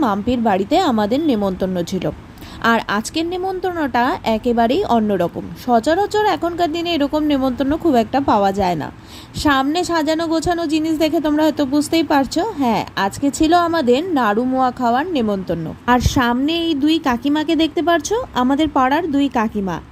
মাম্পির বাড়িতে আমাদের নেমন্তন্ন ছিল। আর আজকের নেমন্তন্নটা একেবারেই অন্যরকম। সচরাচর এখনকার দিনে এরকম নেমন্তন্ন খুব একটা পাওয়া যায় না। সামনে সাজানো গোছানো জিনিস দেখে তোমরা হয়তো বুঝতেই পারছো, হ্যাঁ, আজকে ছিল আমাদের নাড়ু মোয়া খাওয়ার নেমন্তন্ন। আর সামনে এই দুই কাকিমাকে দেখতে পারছো, আমাদের পাড়ার দুই কাকিমা।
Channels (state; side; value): identical; both; correlation 1.00